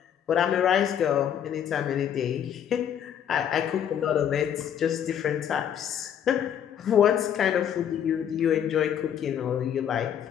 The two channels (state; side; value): quieter; right; 9.2 dB